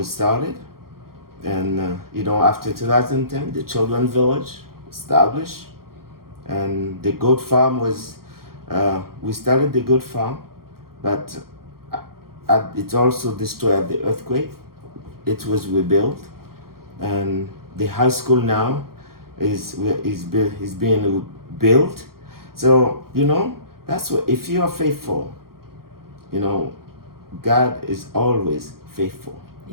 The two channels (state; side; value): late; left; 0.93 ms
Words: started. And, after 2010, the Children's Village established. And the goat farm was, we started the goat farm, but it also destroyed the earthquake. It was rebuilt. And the high school now is being built. So, that's what, if you are faithful, God is always faithful.